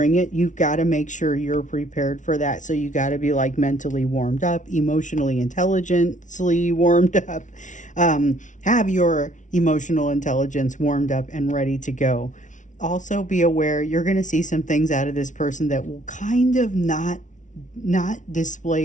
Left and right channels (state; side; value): late; right; 0.37 ms